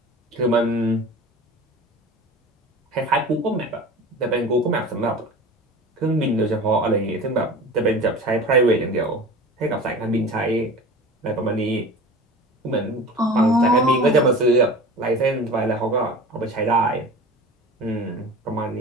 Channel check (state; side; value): normal; both; correlation 0.36